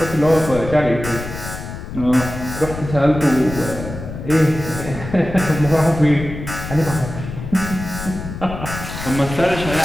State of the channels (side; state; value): left; noise; rumble, 9 dB below the sound